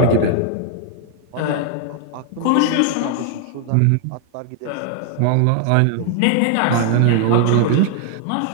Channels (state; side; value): different; both; correlation 0.00